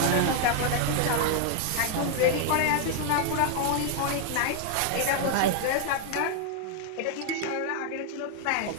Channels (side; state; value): both; different; correlation 0.00